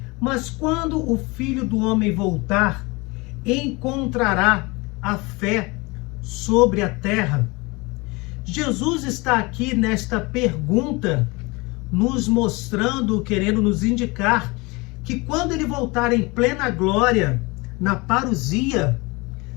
mas quando o Filho do Homem voltar, encontrará a fé sobre a terra? Jesus está aqui nesta pergunta nos mostrando, querendo nos indicar que quando ele voltar em plena glória, na parousia,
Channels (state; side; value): quieter; right; 25.3 dB